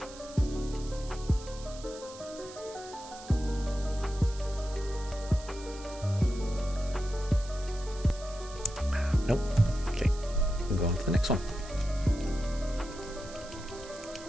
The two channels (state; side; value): noise; right; hiss, 17 dB below the sound